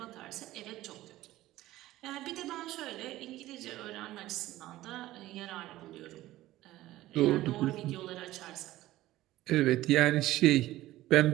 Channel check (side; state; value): left; quieter; 16.0 dB